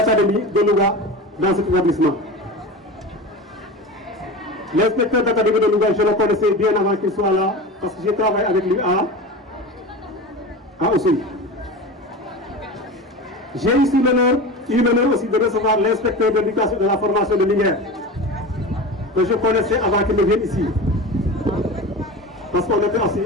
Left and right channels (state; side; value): normal; both; correlation 0.30